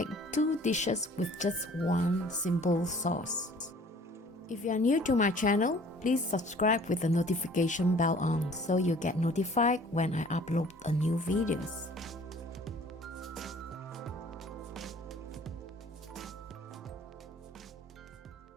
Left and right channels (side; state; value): both; normal; correlation 0.52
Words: two dishes with just one simple sauce. If you are new to my channel, please subscribe with the notification bell on so you get notified when I upload a new videos.